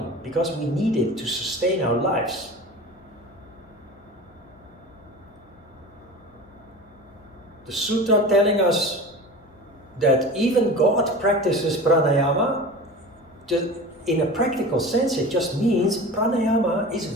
because we need it to sustain our lives. The sutra telling us that even God practices pranayama, in a practical sense, it just means pranayama is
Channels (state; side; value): noise; left; hum, 29 dB below the sound